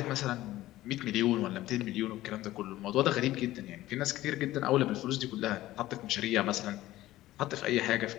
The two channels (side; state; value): right; quieter; 15.8 dB